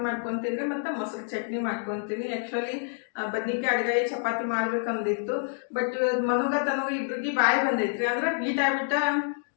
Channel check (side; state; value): right; silent; 60 dB below the other